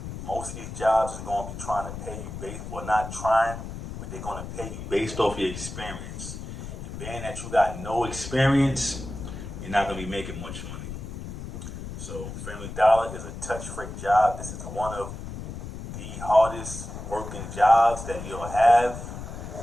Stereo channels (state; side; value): noise; left; rumble, 9 dB below the sound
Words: most of these jobs is going to be trying to pay you based, well, not trying, but they're going to pay you based off your experience. And being that you got no experience, you're not going to be making much money. So, Family Dollar is a touch free job. This is one of the hardest working jobs that you'll have,